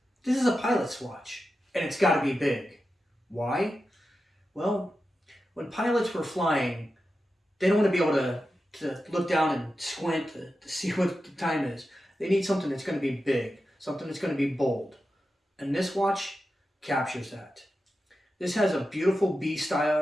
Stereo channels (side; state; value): both; normal; correlation 0.91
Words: is a pilot's watch, and it's gotta be big. Why? Well, when pilots were flying, they don't want to be able to look down and squint to see what the time is. They need something that's going to be big, something that's going to be bold. And this watch captures that. This has a beautiful